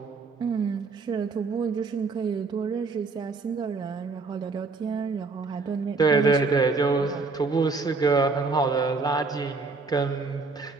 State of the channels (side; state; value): left; quieter; 4.2 dB